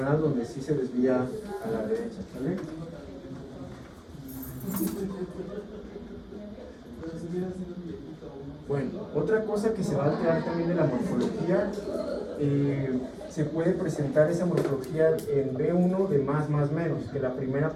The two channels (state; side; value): identical; both; correlation 1.00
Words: donde sí se desvía a la derecha, ¿vale? Bueno, otra cosa que se va a alterar también de la morfología, se puede presentar esa morfología en B1 de más menos, que la primera